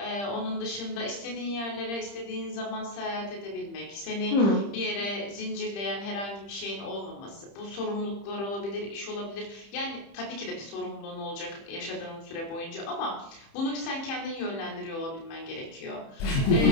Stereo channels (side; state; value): right; late; 30 ms